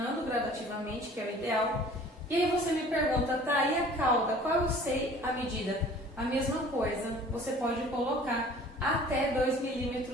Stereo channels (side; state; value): both; normal; correlation 0.48